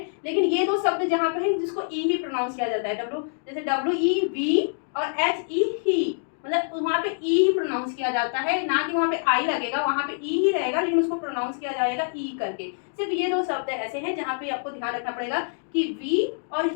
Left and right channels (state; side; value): silent; right; digital silence